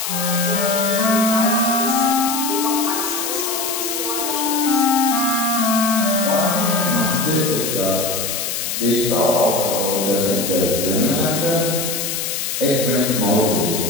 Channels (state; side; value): noise; left; hiss, 3 dB below the sound